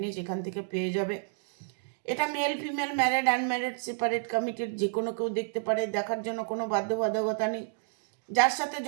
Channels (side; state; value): left; silent; digital silence